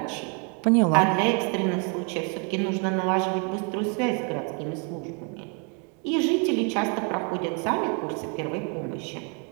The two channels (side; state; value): left; quieter; 36.9 dB